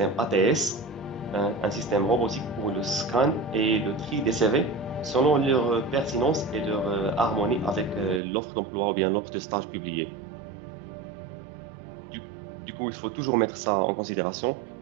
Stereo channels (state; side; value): drops out; left; at 8.2 s